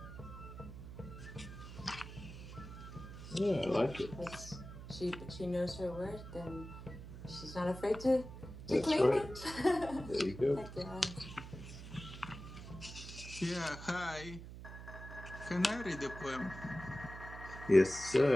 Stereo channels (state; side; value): noise; right; hum, 12 dB below the sound